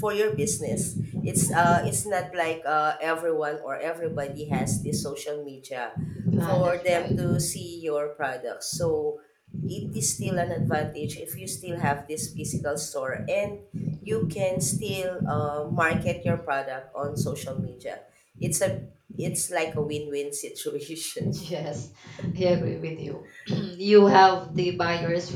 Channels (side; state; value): both; identical; correlation 1.00